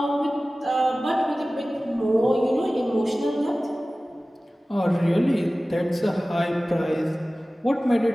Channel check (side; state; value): both; normal; correlation 0.97